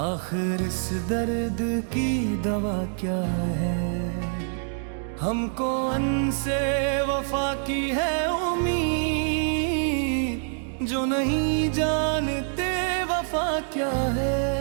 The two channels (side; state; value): left; silent; 61 dB below the other